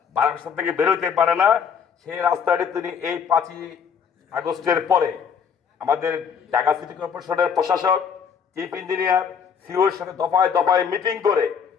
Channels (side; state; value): right; quieter; 7.0 dB